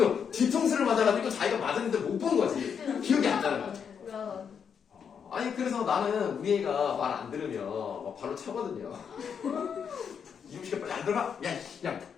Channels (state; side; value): quieter; right; 7.1 dB